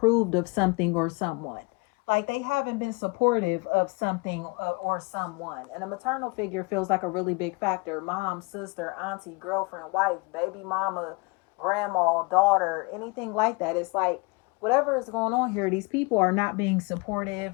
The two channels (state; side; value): quieter; right; 28.6 dB